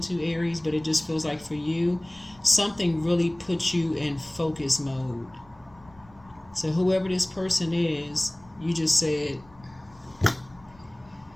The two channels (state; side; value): noise; left; rumble, 27 dB below the sound